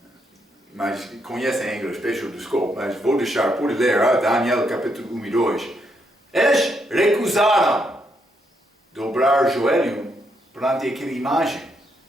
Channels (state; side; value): normal; both; correlation 0.77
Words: mas conhecem em inglês, peço desculpa, mas vou deixar por ler Daniel capítulo 1 e 2. Eles recusaram dobrar joelho perante aquela imagem.